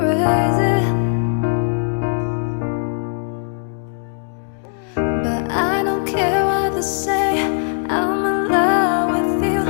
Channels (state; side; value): silent; right; digital silence